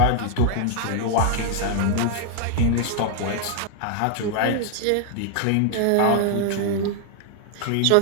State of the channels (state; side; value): different; both; correlation 0.00